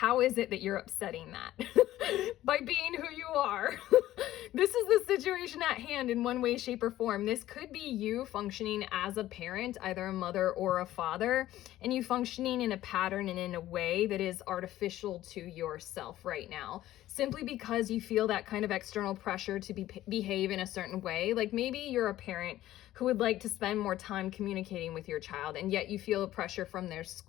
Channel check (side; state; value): right; quieter; 14.4 dB